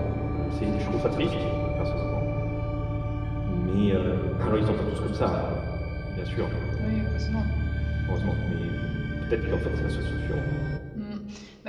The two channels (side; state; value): both; identical; correlation 1.00